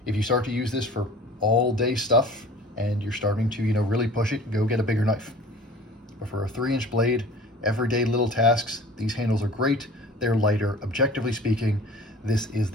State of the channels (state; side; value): normal; both; correlation 0.44